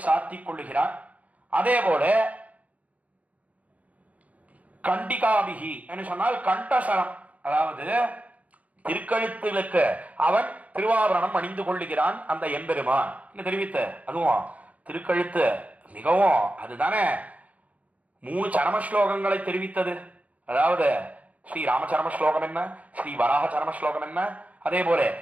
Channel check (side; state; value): left; late; 0.070 ms